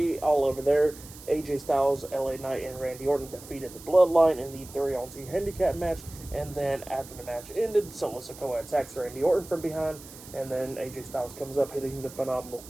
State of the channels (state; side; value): noise; right; hiss, 17 dB below the sound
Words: all over there. AJ Styles, LA Knight, and Randy Orton defeated the Bloodline in the 3-on-2 handicap match. And then after the match ended, Solo Sikoa attacks Randy Orton from behind, and then AJ Styles comes up hitting the phenomenal